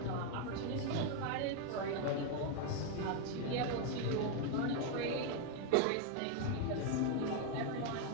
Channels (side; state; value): both; different; correlation 0.01